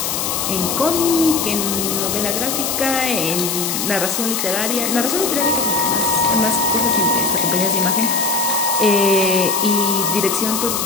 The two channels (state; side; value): noise; left; hiss, 1 dB below the sound